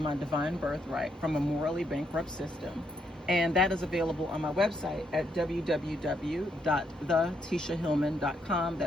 Divine Birthright from a Morally Bankrupt System. And that is available on my website at www.thetishahillman.com.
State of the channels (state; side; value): normal; both; correlation 0.76